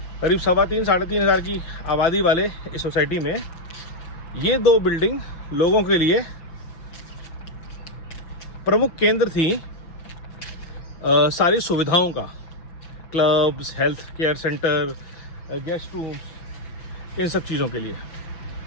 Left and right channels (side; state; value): right; late; 6.0 ms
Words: करीब 3,500-3,500 हज़ार की आबादी वाले इस सोसाइटी में ये 2 बिल्डिंग लोगों के लिए प्रमुख केंद्र थी सारी सुविधाओं का, clubs, health care centre, guest rooms, इन सब चीज़ों के लिए।